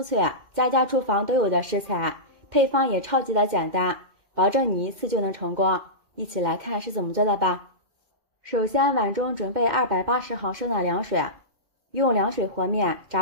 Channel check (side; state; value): left; late; 2.3 ms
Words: 脆，家家厨房都有的食材，配方也超级的简单，保证你一次就能成功。一起来看是怎么做的吧。首先碗中准备280毫升的凉水，用凉水和面，